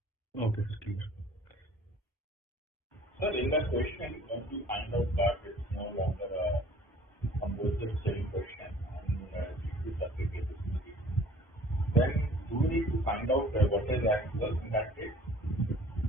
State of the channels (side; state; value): both; normal; correlation 0.52